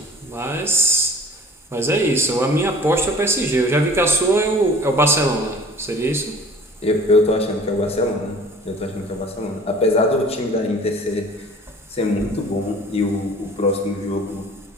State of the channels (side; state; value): both; normal; correlation 0.47